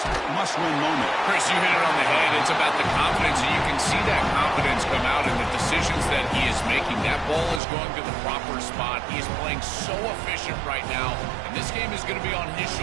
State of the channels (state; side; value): drops out; left; at 7.6 s